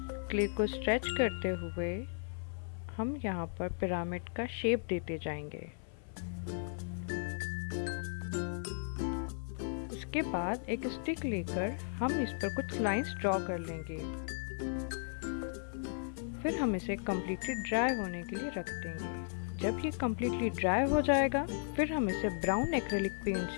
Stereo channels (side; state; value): right; silent; 54 dB below the other